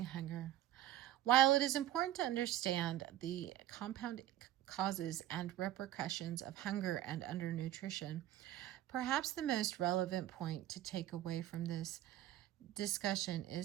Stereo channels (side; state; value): left; quieter; 13.0 dB